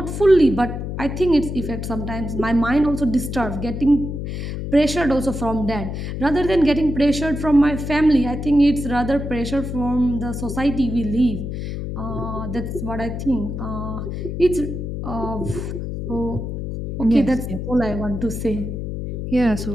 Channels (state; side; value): noise; left; hum, 5 dB below the sound